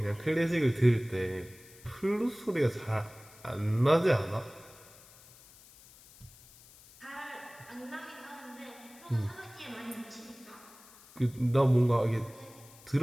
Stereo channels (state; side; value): noise; left; hiss, 23 dB below the sound